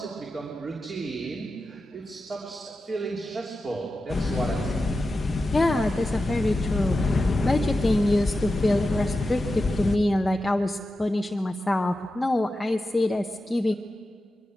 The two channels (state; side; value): normal; both; correlation 0.91